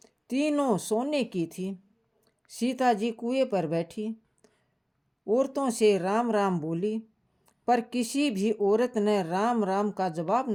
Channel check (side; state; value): both; identical; correlation 1.00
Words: तीनों सोने की थी। सीता जी कुएं पर बैठी, औरतों से राम राम बोली, पर किसी भी औरत ने राम राम का जवाब